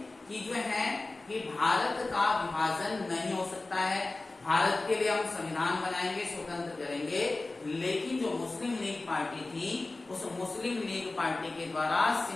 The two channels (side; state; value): right; quieter; 3.2 dB